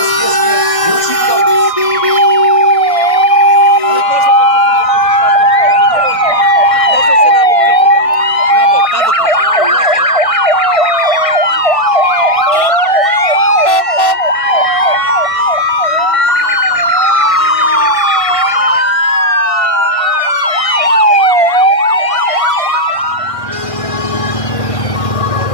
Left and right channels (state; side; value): late; right; 1.6 ms